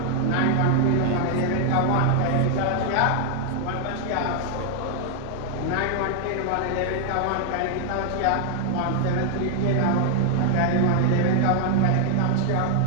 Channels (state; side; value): different; both; correlation 0.00